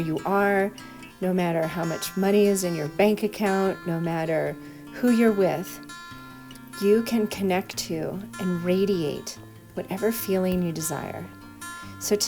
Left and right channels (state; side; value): identical; both; correlation 1.00